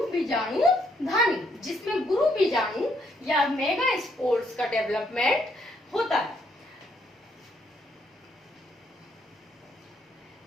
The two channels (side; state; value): both; normal; correlation 0.72